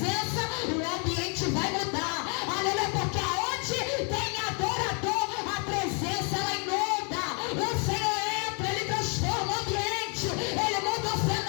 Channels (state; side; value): quieter; right; 36.9 dB